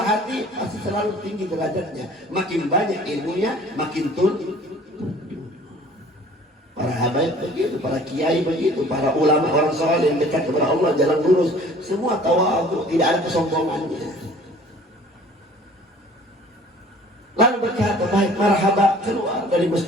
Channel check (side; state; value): both; normal; correlation 0.50